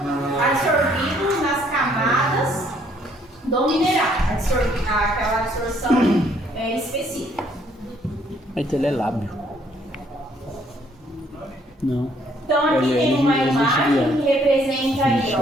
absorvido nas camadas do mineral, aquela absorção específica. Então ele é lábio. Não. Então aqui tem uma imagem que representa aí,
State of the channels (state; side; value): normal; both; correlation 0.66